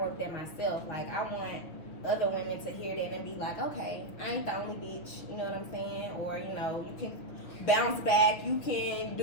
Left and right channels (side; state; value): right; late; 6.5 ms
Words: that myself. Like I want other women to hear that and be like, okay, I ain't the only bitch. You know what I'm saying? Or you know, you can bounce back. You can